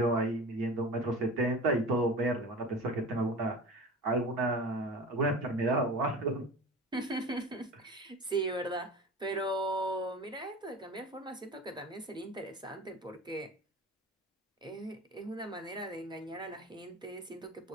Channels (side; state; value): both; normal; correlation 0.35